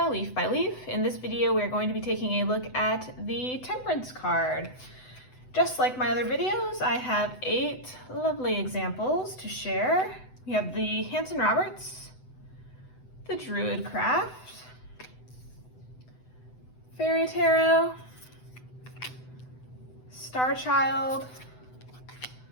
Leaf by Leaf. In this video, we're going to be taking a look at the Temperance card. Just like my other videos, I have 8 lovely examples to share. We have the Hansen Roberts, the DruidCraft, Fairy Tarot, Starchild,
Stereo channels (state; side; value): late; right; 7.9 ms